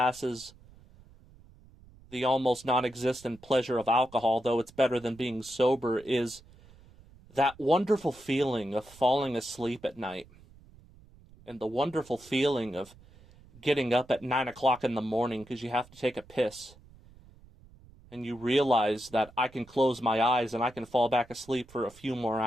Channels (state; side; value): noise; right; rumble, 24 dB below the sound